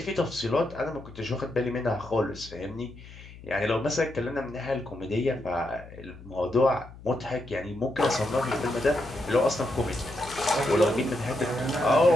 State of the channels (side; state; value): left; noise; hum, 18 dB below the sound